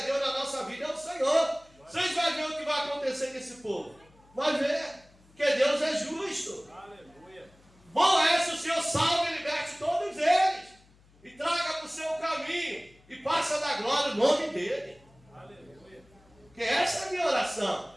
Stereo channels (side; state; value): left; noise; hum, 29 dB below the sound